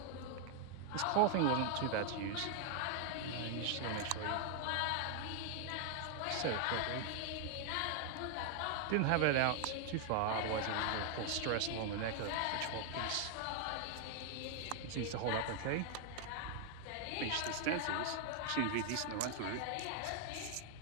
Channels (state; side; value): different; both; correlation 0.00